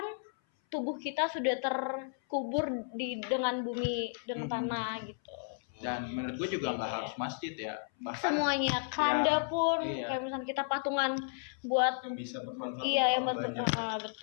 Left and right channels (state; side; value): silent; right; 56 dB below the other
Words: tubuh kita sudah terkubur dengan bumi, dengan tanah gitu. Dan menurut gue juga nggak harus masjid ya. Bahkan Semuanya, keranda pun iya. kayak misalnya kita patungan buat Yang bisa bermanfaat iya yang untuk orang banyak.